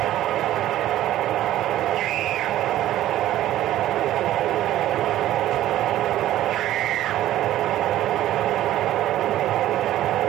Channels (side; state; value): left; quieter; 13.5 dB